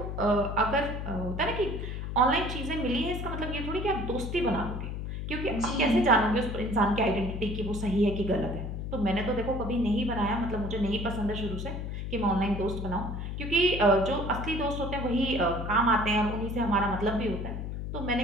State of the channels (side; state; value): left; noise; hum, 5 dB below the sound